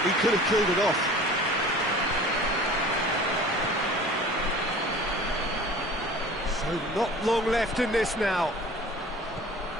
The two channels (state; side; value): normal; both; correlation 0.43